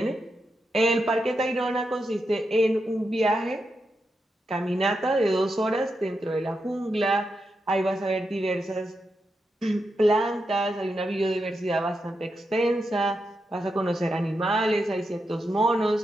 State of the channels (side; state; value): both; normal; correlation 0.86